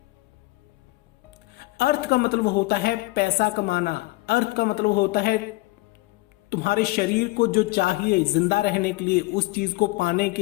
अर्थ का मतलब होता है पैसा कमाना। अर्थ का मतलब होता है तुम्हारे शरीर को जो चाहिए जिंदा रहने के लिए, उस चीज को पाने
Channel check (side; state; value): right; quieter; 21.0 dB